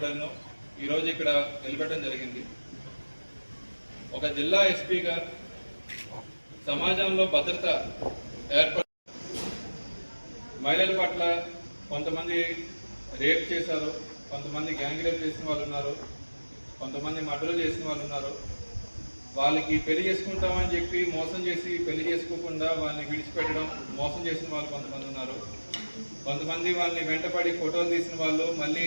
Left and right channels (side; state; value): both; inverted; correlation -1.00